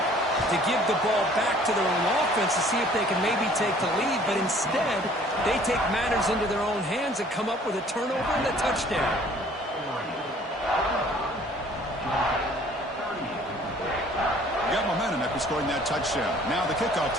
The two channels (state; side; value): normal; both; correlation 0.55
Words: to give the ball back to their own offense to see if they can maybe take the lead. But instead, they take matters into their own hands and come up with a turnover and a touchdown. Got momentum after scoring that touchdown. Now the kickoff